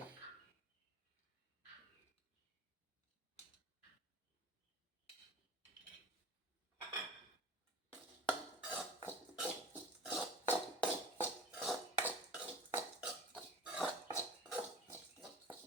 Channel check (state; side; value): normal; both; correlation 0.37